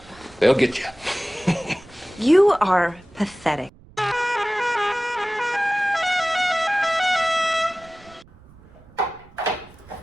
They'll get you. You are pathetic.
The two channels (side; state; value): right; noise; rumble, 25 dB below the sound